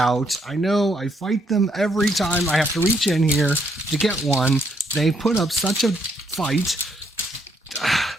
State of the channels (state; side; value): normal; both; correlation 0.73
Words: I know, I fight them every time. I have to reach in here to get one. They put up such a fight.